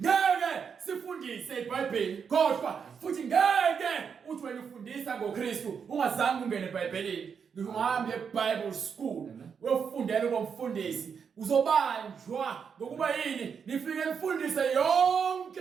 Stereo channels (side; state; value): left; quieter; 6.6 dB